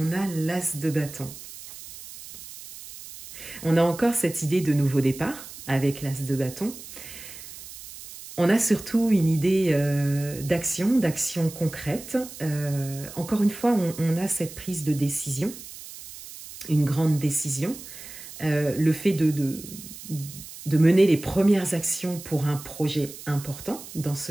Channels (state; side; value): noise; right; hiss, 14 dB below the sound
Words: a l'as de bâton. On a encore cette idée de nouveau départ avec l'as de bâton. On a surtout une idée d'action concrète. Encore une fois, on a cette prise de décision, une grande décision, le fait de mener les premières actions pour un projet important dans